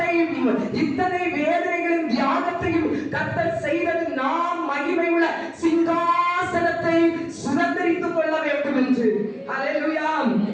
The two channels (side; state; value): both; identical; correlation 1.00